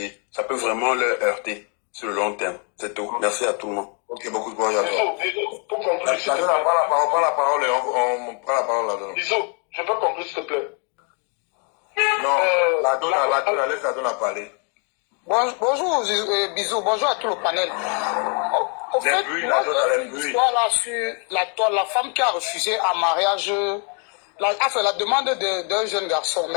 ça peut vraiment leur heurter sur le long terme. C'est tout. Merci à tout le monde. Ok, beaucoup de bon à toi. Pour conclure, s'il te plaît. On prend la parole et on prend la parole là-dedans. Bisous, je peux conclure, s'il te plaît. Non, la donne, laisse la donne à parler. Bonjour, bisous, bonjour à tout le panel. Au fait, moi, j'ai une histoire là sur la femme qui a refusé un mariage, la demande d'un jeune garçon.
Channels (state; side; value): quieter; right; 38.3 dB